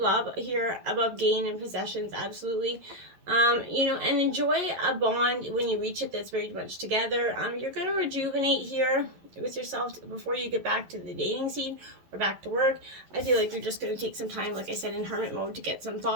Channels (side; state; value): left; late; 11 ms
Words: love here above gain and possessions, absolutely. You know, and enjoy a bond when you reach it that's very much together. You're going to rejuvenate here with yourself before you get back to the dating scene or back to work. I feel like you're just going to take some time, like I said, in hermit mode to get some